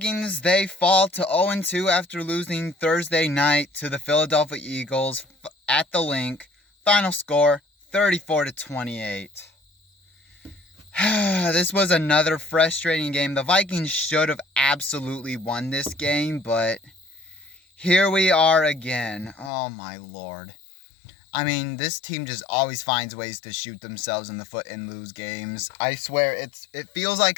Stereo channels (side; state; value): right; drops out; at 19.5 s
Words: they fall to 0-2 after losing Thursday night to the Philadelphia Eagles at the Link. Final score, 34-28. This was another frustrating game. The Vikings should have absolutely won this game, but here we are again. Oh, my Lord. I mean, this team just always finds ways to shoot themselves in the foot and lose games. I swear, it feels like